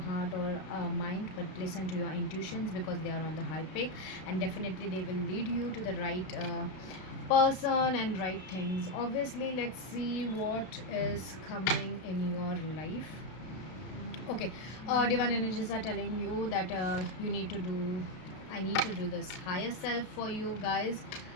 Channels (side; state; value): right; late; 32 ms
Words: or mind, but listen to your intuitions, because they are on the high peak, and definitely they will lead you to the right person and right things. Obviously, let's see what is coming in your life. Okay, divine energies are telling you that I need to do this higher self for you guys.